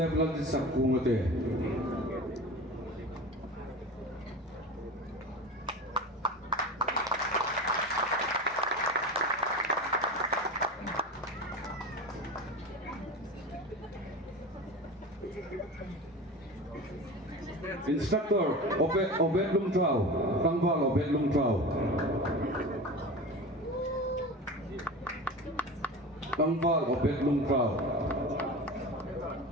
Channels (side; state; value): both; normal; correlation 0.31